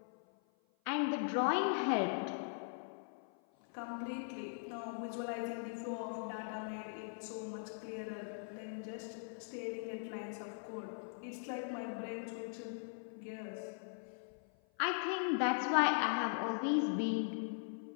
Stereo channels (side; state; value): right; silent; 51 dB below the other